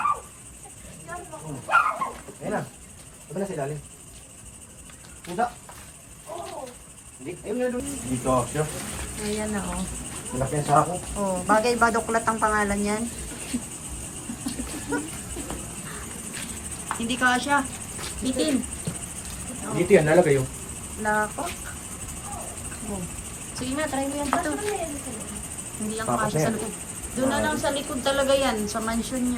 Ayun na. Diba na sa ilalim? Pusa? Hindi. Ayun nga doon. Dito siya. Ayan na oh. Malaki ang sako. Oh, bagay ba doklat ang pangalan yan? Hindi ka siya. Bitin. Dito yan, nalagay yung. Lako. Oh. Sige na, try mo yan dito. Hindi ang Tapos kasya na sa yan. likod. Doon na lang sa likod talaga yan, sa mansion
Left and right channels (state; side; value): identical; both; correlation 1.00